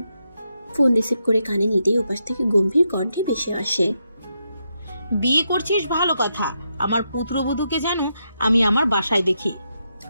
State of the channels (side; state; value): both; inverted; correlation -0.83